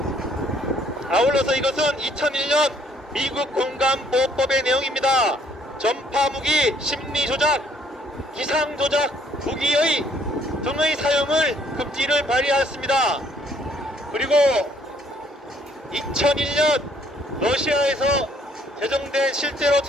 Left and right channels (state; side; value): normal; both; correlation 0.64